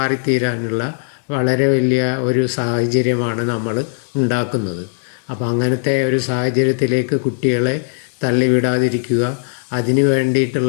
വളരെ വലിയ ഒരു സാഹചര്യമാണ് നമ്മൾ ഉണ്ടാക്കുന്നത്. അപ്പോൾ അങ്ങനത്തെ ഒരു സാഹചര്യത്തിലേക്ക് കുട്ടികളെ തള്ളിവിടാതിരിക്കുക, അതിന്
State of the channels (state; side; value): silent; right; digital silence